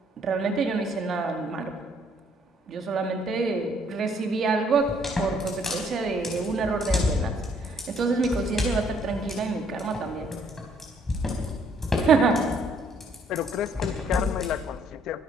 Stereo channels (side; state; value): both; normal; correlation 0.66